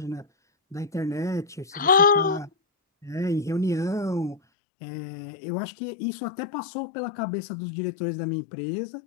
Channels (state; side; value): drops out; right; at 4.4 s